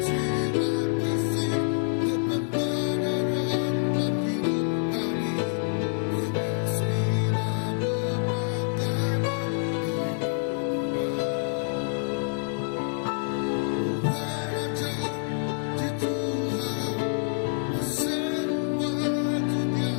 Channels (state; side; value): silent; right; digital silence